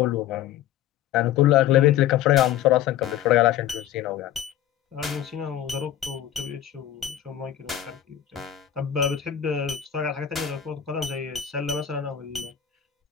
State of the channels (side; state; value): right; quieter; 10.9 dB